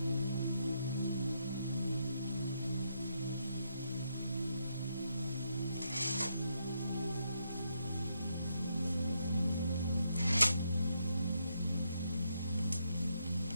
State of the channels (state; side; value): inverted; both; correlation -0.79